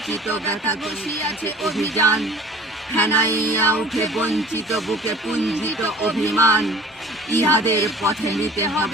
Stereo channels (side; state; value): both; normal; correlation 0.45